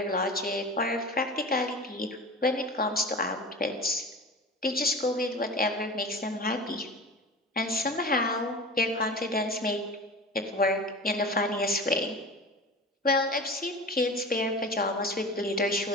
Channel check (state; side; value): normal; both; correlation 0.34